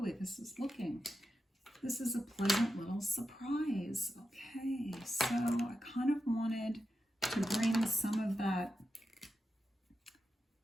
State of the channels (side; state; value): both; normal; correlation 0.89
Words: way this is looking. This is a pleasant little surprise. Okay, so I kind of wanted to bring some of that.